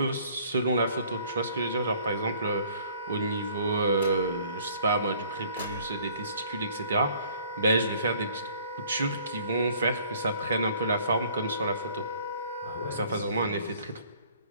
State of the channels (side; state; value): both; inverted; correlation -0.56